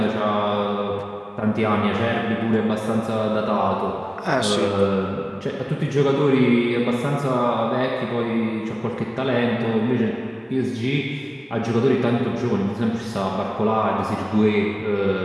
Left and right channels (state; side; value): identical; both; correlation 1.00